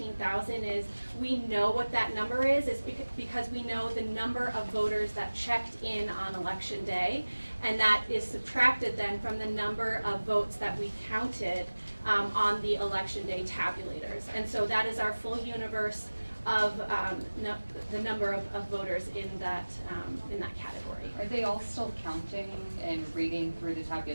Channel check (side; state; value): both; inverted; correlation -1.00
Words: is we know what that number is because we know the number of voters that checked in on Election Day, and that is subtracted then from the number of votes that we counted on the Election Day tabulators. And so that is our full universe of the number of voters in that category. Are they all still counting and reading through the